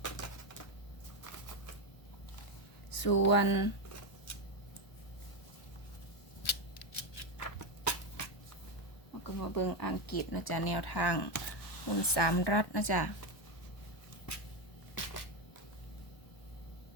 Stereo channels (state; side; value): late; right; 1.1 ms